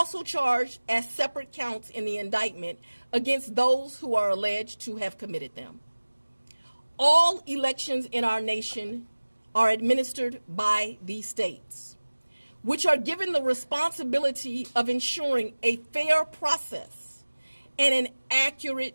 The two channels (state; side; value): inverted; both; correlation -1.00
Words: charged as separate counts in the indictment against those who are alleged to have committed them. All elections in our nation are administered by these states, which are given the responsibility of ensuring a fair process and an